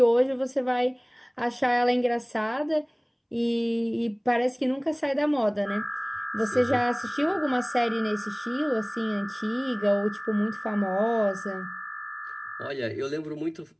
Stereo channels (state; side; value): identical; both; correlation 1.00